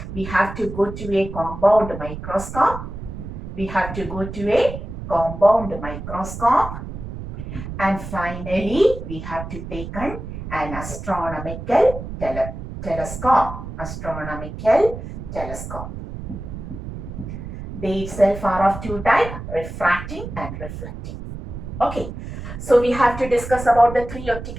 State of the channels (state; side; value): noise; right; rumble, 9 dB below the sound